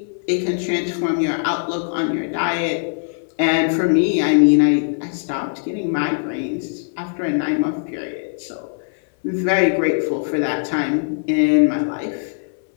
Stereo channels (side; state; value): right; silent; 64 dB below the other